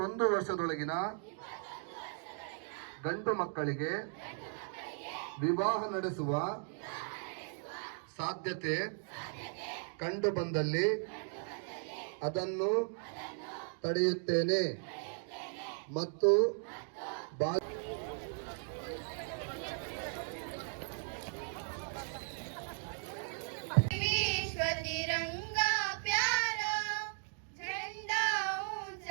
ವರ್ಷದೊಳಗಿನ ಗಂಡು ಮಕ್ಕಳಿಗೆ ವಿವಾಹ ನಡೆಸುವ ಸಾಧ್ಯತೆ ಕಂಡು ಬಂದಲ್ಲಿ ಅದನ್ನು ತಡೆಯುತ್ತೇನೆ ಮತ್ತು तिरंगा प्यारा झंडा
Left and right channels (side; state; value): left; silent; 53 dB below the other